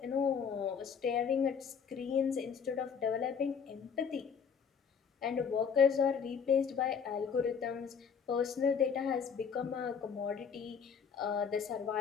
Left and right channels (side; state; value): right; quieter; 6.7 dB